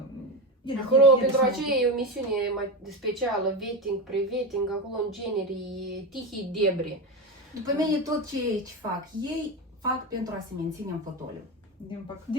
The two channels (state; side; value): normal; both; correlation 0.18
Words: Acolo, pentru aceea e o misiune mai specială, vetting, pre-vetting, acolo în genere e tihii debri. După mine tot ce fac, ei fac pentru a se menține în fotoliu.